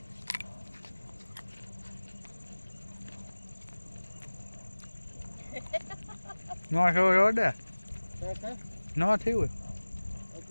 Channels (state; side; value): inverted; both; correlation -1.00